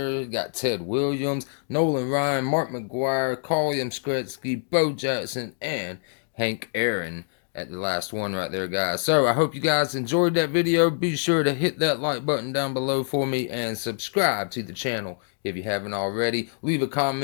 got Ted Williams, Nolan Ryan, Mark McGwire, Carl Yastrzemski, Bo Jackson, and Hank Aaron at the last one right there, guys. So I hope you guys enjoyed that video. Be sure to hit that like button down below for me and subscribe to the channel if you haven't already. Leave a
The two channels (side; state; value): right; silent; 61 dB below the other